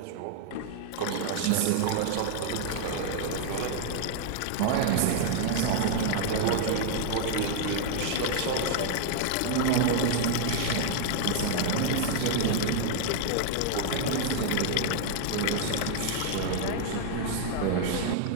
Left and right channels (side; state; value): both; different; correlation 0.00